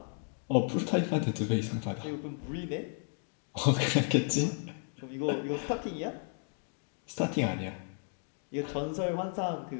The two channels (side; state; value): right; silent; 55 dB below the other